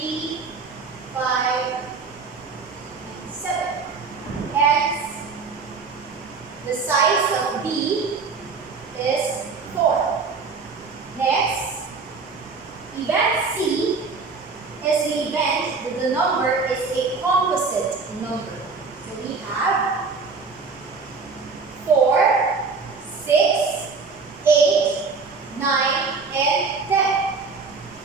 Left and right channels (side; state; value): left; quieter; 4.6 dB